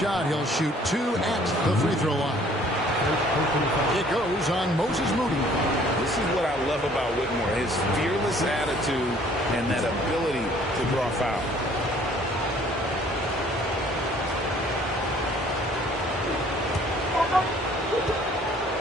He'll shoot 2 at the free throw line. It goes on Moses Moody. This is what I love about Whitmore, his fearless attitude and that ability to draw foul.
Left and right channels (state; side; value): normal; both; correlation 0.57